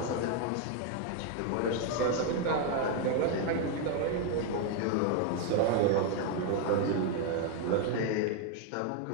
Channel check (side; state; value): both; different; correlation 0.01